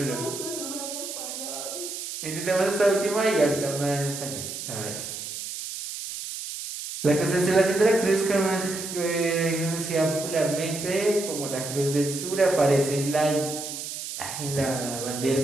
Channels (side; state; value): right; noise; hiss, 7 dB below the sound